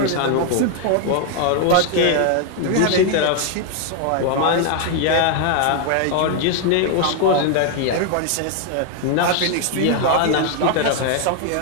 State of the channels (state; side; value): different; both; correlation 0.00